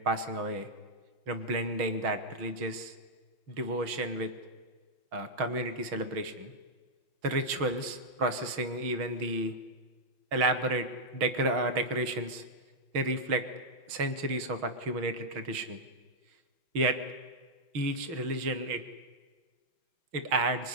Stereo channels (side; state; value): left; late; 6.2 ms